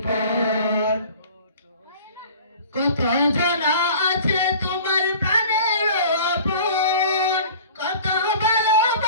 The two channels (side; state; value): both; inverted; correlation -0.44